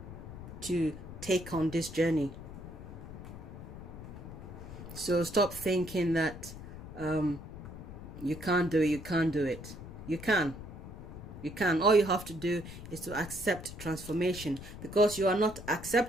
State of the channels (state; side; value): noise; left; rumble, 12 dB below the sound